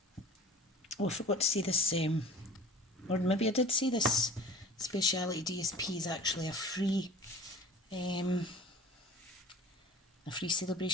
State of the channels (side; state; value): both; normal; correlation 0.41